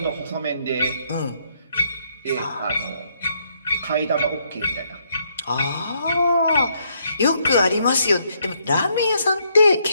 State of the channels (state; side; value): inverted; both; correlation -0.73